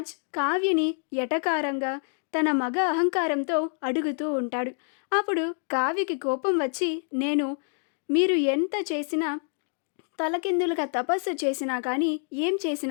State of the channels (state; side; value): silent; right; 60 dB below the other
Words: కావ్యని ఎటకారంగా తన మగ అహంకారంతో అడుగుతూ ఉంటాడు. అప్పుడు కావ్యకి కోపం వచ్చి, మీరు ఎంత చేసినా తలకిందులుగా తపస్సు చేసినా కానీ ఏం